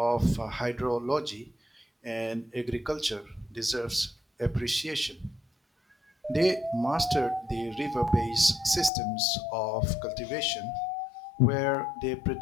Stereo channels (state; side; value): drops out; right; at 8.9 s